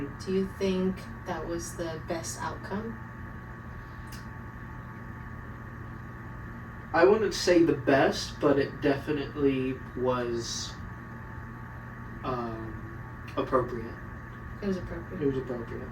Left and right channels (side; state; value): both; identical; correlation 1.00